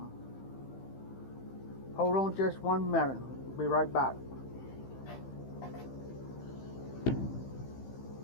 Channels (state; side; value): late; right; 15 ms